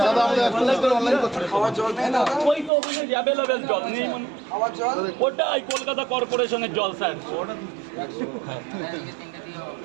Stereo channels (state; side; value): drops out; left; at 2.7 s